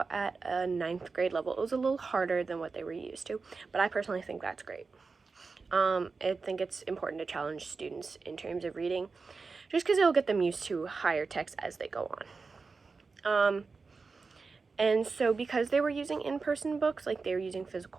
at a 9th grade level. It was a little harder than what they were used to, but I personally think that's great. I think it's important to challenge students in terms of reading, just because it'll get them used to higher text as they go on. And so because they were using in-person books, like they were using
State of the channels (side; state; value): left; quieter; 4.5 dB